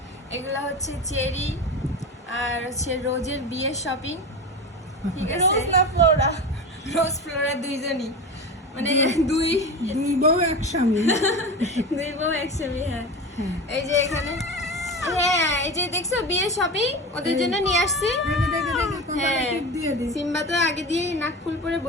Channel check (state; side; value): normal; both; correlation 0.26